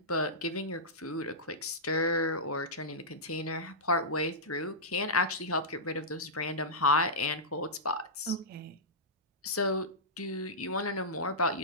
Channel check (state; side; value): normal; both; correlation -0.15